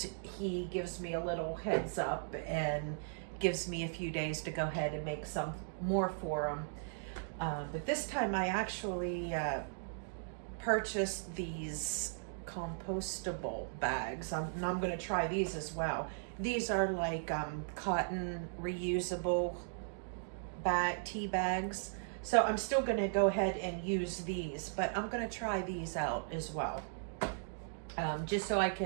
he gives me a little heads up and gives me a few days to go ahead and make some more for him. But this time I actually purchased these compostable bags. And I'm going to try these as well. These are like cotton reusable tea bags. So I'm still going to go ahead and use these, but I'm going to try these out as well. Just so I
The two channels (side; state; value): left; silent; digital silence